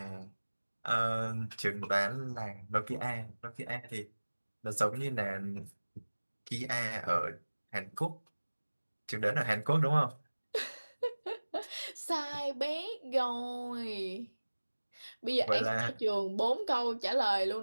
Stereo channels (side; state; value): both; inverted; correlation -1.00